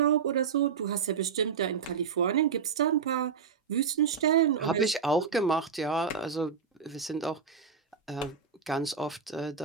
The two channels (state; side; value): quieter; left; 6.3 dB